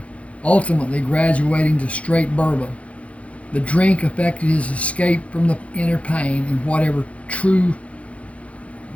ultimately graduating to straight bourbon. The drink affected his escape from the inner pain and whatever truly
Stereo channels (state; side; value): late; right; 0.064 ms